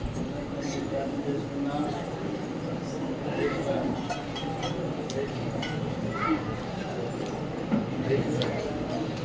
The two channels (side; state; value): both; identical; correlation 1.00